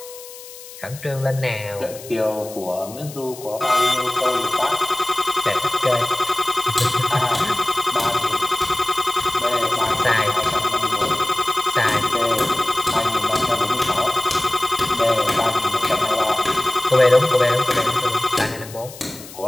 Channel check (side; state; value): left; noise; hiss, 16 dB below the sound